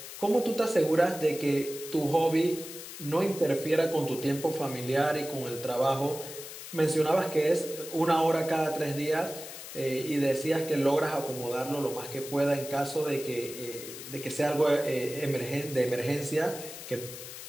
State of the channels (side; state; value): left; noise; hiss, 11 dB below the sound